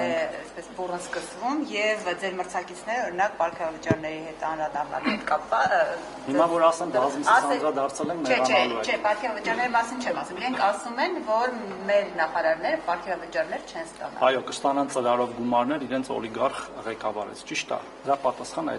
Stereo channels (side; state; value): both; identical; correlation 1.00